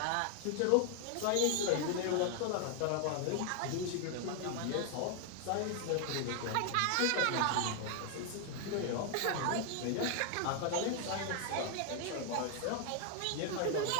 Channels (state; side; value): different; both; correlation 0.00